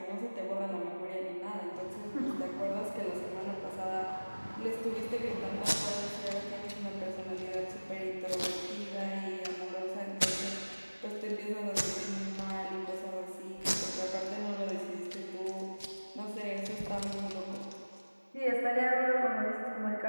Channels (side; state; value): both; inverted; correlation -1.00